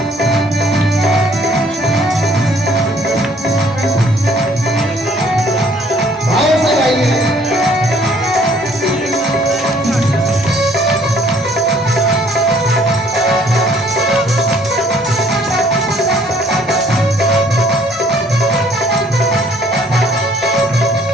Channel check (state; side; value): normal; both; correlation 0.61